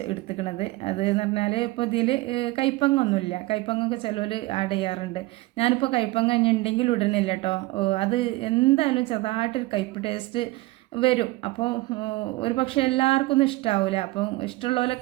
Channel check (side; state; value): left; quieter; 20.1 dB